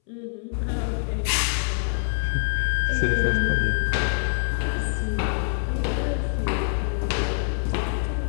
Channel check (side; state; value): right; silent; 62 dB below the other